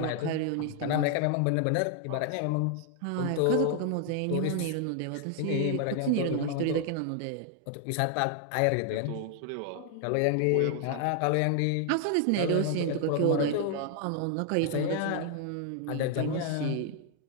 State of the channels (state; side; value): different; both; correlation 0.00